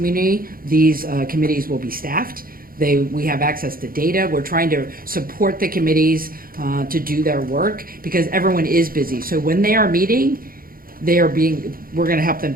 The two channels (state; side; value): late; left; 0.42 ms